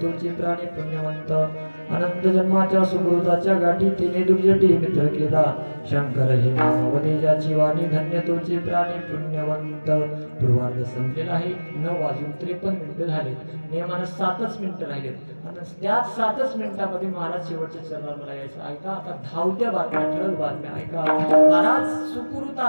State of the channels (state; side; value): inverted; both; correlation -1.00